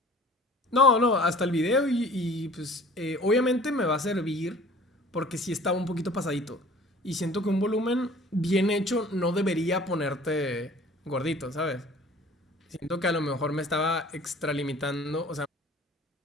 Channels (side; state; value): both; normal; correlation 0.48